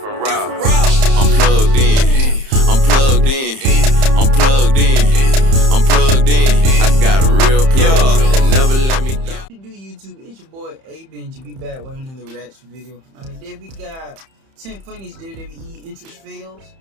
route. I'm plugged in. I'm plugged in. I'm plugged in. I'm plugged in. I got a real plug that never let me down. Do YouTube? It's your boy A Benji. We back with another reaction video. Today we got 10 funniest WWE entrance fails.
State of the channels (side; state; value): left; late; 31 ms